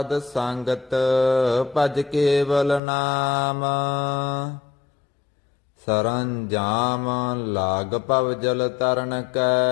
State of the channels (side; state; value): right; drops out; at 2.8 s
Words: ਸੰਗਤ ਭਜ ਕੇਵਲ ਨਾਮ। ਸਰੰਜਾਮ ਲਾਗ ਭਵ ਜਲ ਤਰਨ